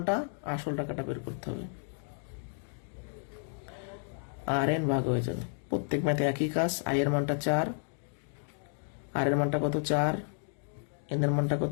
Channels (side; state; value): right; silent; 56 dB below the other